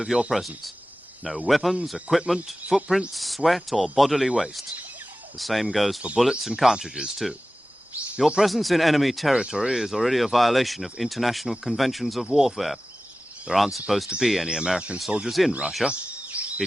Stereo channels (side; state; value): both; normal; correlation 0.95